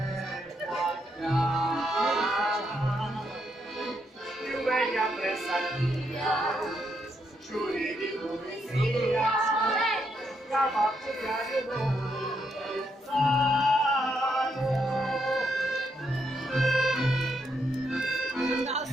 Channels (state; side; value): normal; both; correlation 0.78